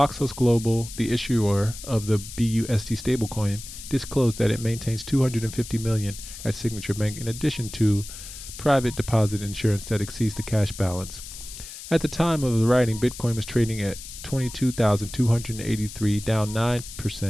Global, the issuer of the BUSD stablecoin, disclosed that it maintains $250 million at Signature Bank in addition to private deposit insurance that exceeds the cash balance. At the time of the writing, Bitcoin was trading at $22,283, down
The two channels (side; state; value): left; noise; hiss, 13 dB below the sound